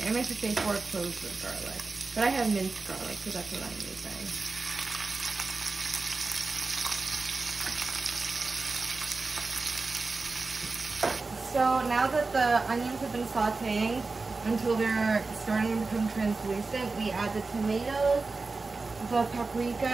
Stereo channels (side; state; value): left; quieter; 3.9 dB